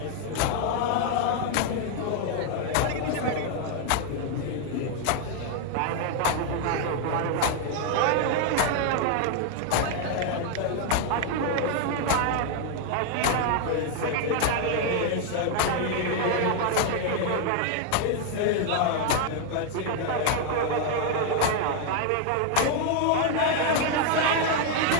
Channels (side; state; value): both; different; correlation 0.00